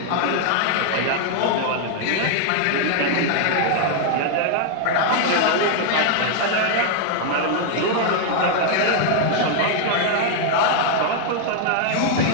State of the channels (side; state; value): both; different; correlation 0.00